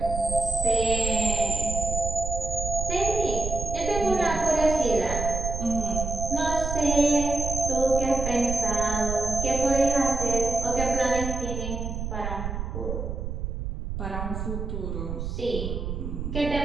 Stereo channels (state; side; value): noise; right; rumble, 4 dB below the sound